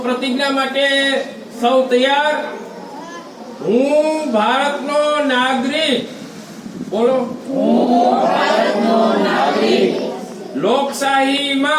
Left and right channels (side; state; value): both; identical; correlation 1.00